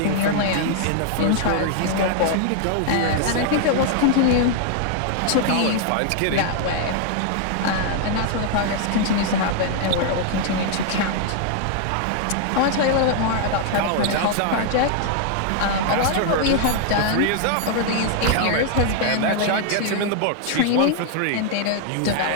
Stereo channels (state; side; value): different; both; correlation 0.00